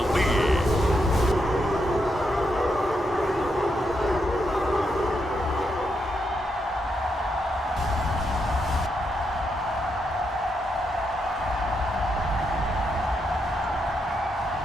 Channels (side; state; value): both; normal; correlation 0.81